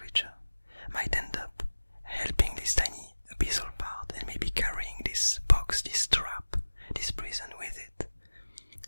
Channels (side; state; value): both; inverted; correlation -1.00